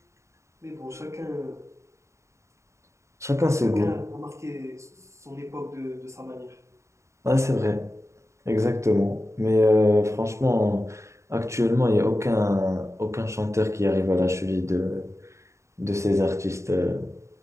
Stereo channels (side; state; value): left; late; 0.14 ms